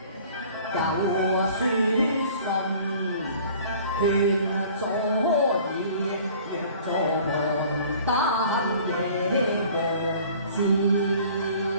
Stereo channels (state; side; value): inverted; both; correlation -0.50